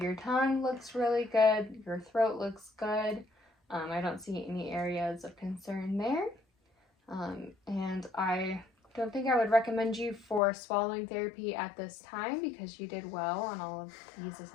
your tongue looks really good. Your throat looks good. I don't see any areas of concern there. And I don't think I would recommend you for swallowing therapy at this time because you did well on all of these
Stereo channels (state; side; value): drops out; right; at 10.4 s